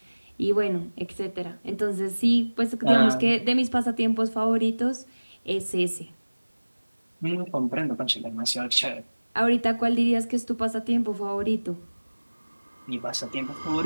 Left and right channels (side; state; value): both; inverted; correlation -1.00